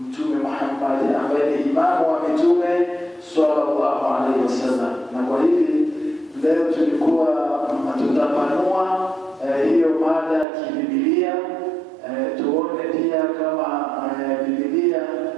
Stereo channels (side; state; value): left; drops out; at 10.5 s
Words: Mtume Muhammad ambaye ni imamu wa mitume sallallahu alaihi wasallam. Na kwa hivi leo tulikuwa tutapanua hiyo mada ya kibibilia, tuone pia kama Biblia